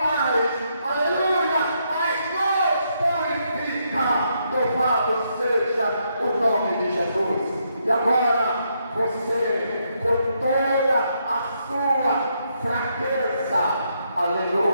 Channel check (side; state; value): both; inverted; correlation -0.77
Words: aleluia, mas nos purifica, louvado seja o nome de Jesus. E agora você, com toda a sua fraqueza,